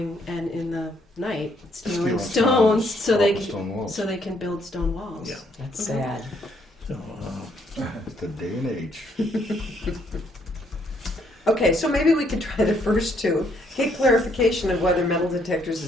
and in the night stealing Stealing stones so they stone walls. so they can build stone walls. Yeah. That's Mhm. sad. So, It's the day and age. Okay, so maybe we could try the first 2. Get clarification of whether metal detectors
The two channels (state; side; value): normal; both; correlation 0.70